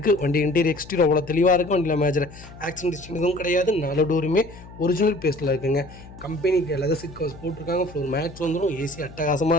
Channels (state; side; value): noise; left; hum, 18 dB below the sound